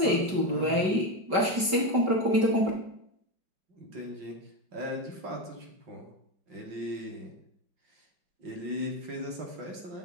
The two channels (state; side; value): late; left; 5.2 ms